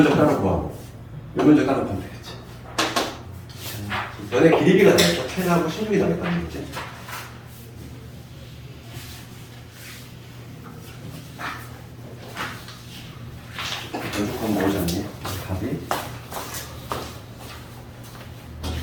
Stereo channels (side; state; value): both; identical; correlation 1.00